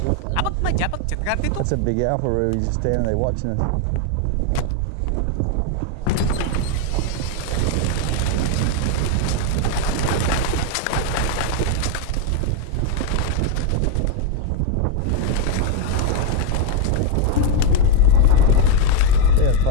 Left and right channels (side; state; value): both; different; correlation 0.01